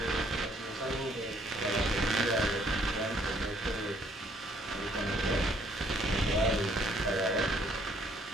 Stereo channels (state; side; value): normal; both; correlation 0.65